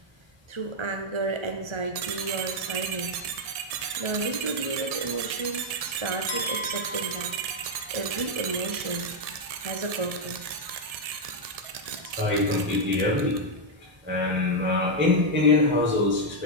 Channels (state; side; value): late; left; 1.7 ms